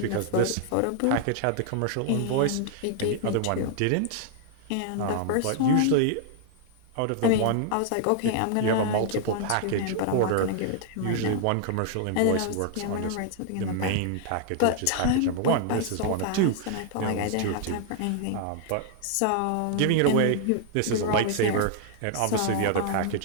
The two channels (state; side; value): different; both; correlation 0.00